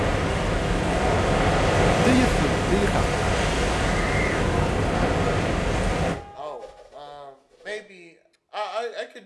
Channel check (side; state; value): both; identical; correlation 1.00